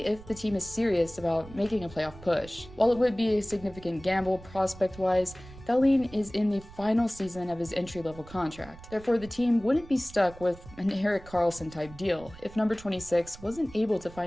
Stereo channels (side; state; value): right; noise; rumble, 18 dB below the sound